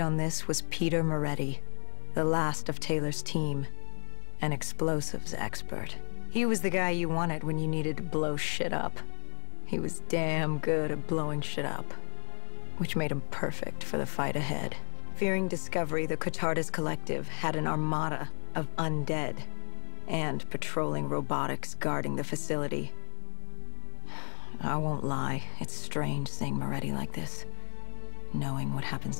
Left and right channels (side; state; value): right; silent; 54 dB below the other